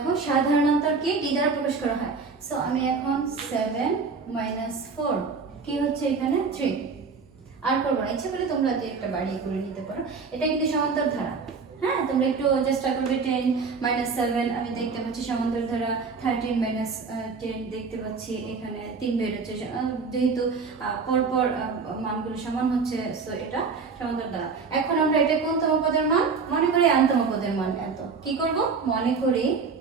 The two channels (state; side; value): quieter; left; 4.9 dB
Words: সাধারণতর কি ডি দ্বারা প্রকাশ করা হয়। সো আমি এখন 7 মাইনাস 4 কি হচ্ছে এখানে 3। আর করবো না, ইচ্ছা করলে তোমরা যে একটা বাড়িয়ে করে নিতে পারো। এটা কিন্তু সমান্তর ধারা। হ্যাঁ, তোমরা একটু চেষ্টা করবে। 10 মাইনাস 7 আমি দেখতে পাচ্ছি সমান্তর ধারা। 13 মাইনাস 10 দেখতে পাচ্ছি এখানে 3 বের হচ্ছে, যেহেতু পরপর মানগুলো সমান হচ্ছে, সো এটা সমান্তর ধারা। এখন আমরা এটা কোনতম পদের মান মনে করি? nতম পদের মান এত। কি করব? মনে করি